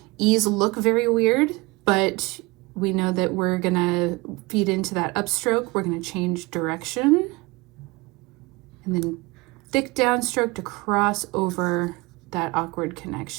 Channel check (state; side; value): quieter; left; 23.9 dB